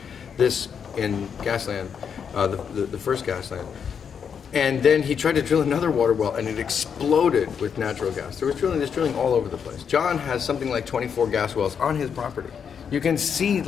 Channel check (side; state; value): right; quieter; 7.1 dB